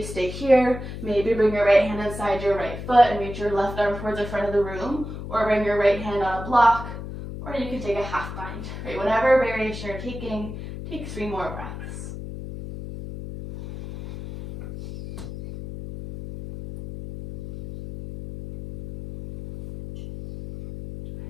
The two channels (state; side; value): noise; left; hum, 9 dB below the sound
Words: stay here, maybe bring your right hand inside your right foot and reach your left arm towards the front of the room, or bring your right hand on a block, or you can take a half bind. Right, whatever variation you're taking, take 3 more breaths.